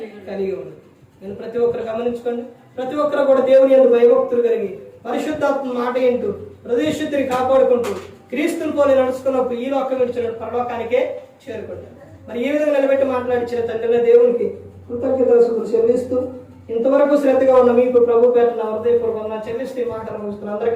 కలిగి ఉండాలి. నేను ప్రతి ఒక్కరు గమనించుకోండి. ప్రతి ఒక్కరు కూడా దేవుని యందు భయభక్తులు కలిగి పరిశుద్ధాత్మ మాట ఏంటూ హృదయశుద్ధిని కాపాడుకుంటూ క్రీస్తుని పోలి నడుచుకున్నప్పుడు ఈ లోకం విడిచిన పరలోకానికే చేరుకుంటారు. మరి ఈ విధంగా నిలబెట్టి మాట్లాడించిన తండ్రిని దేవునికి కృతజ్ఞతలు చెల్లిస్తూ ఇంతవరకు శ్రద్ధగా ఉన్న మీకు ప్రభు పేట నా హృదయపూర్వకంగా చెల్లిస్తూ ఈ మాటలు ముగిస్తున్న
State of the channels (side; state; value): both; identical; correlation 1.00